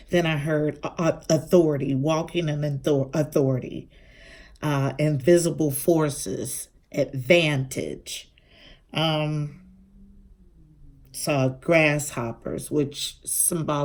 Then I heard authority, walking in authority, invisible forces, advantage. Saw grasshoppers, which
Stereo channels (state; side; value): identical; both; correlation 1.00